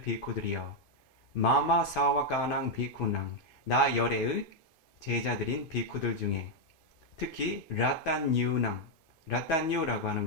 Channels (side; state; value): right; late; 2.5 ms